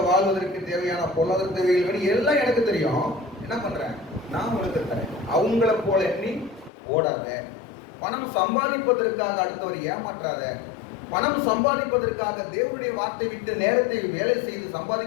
வாழ்வதற்கு தேவையான பொருளாதார தேவைகள் வேணும். எல்லாம் எனக்கு தெரியும். என்ன பண்றேன்? நான் உங்களுக்கு தரேன். அவங்கள போல எண்ணி ஓடாத. பணம் சம்பாதிப்பதற்காக அடுத்தவர் ஏமாற்றாத. பணம் சம்பாதிப்பதற்காக தேவனுடைய வார்த்தை விட்டு நேரத்தை வேலை செய்து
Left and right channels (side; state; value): right; drops out; at 6.7 s